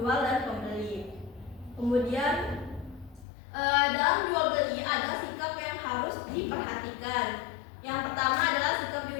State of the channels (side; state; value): right; drops out; at 3.2 s